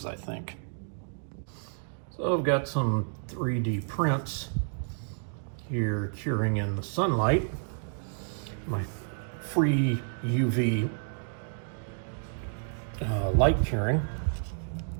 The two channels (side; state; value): left; silent; digital silence